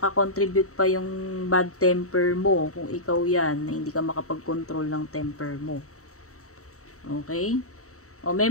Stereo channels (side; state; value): right; late; 0.64 ms